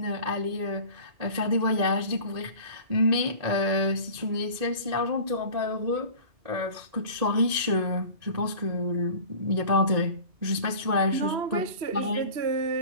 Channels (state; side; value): late; left; 1.8 ms